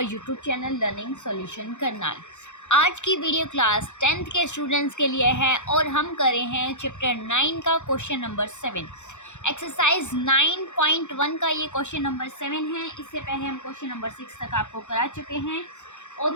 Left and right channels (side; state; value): right; late; 0.84 ms